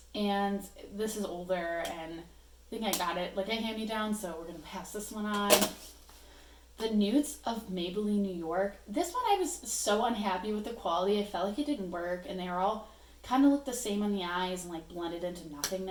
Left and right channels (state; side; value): identical; both; correlation 1.00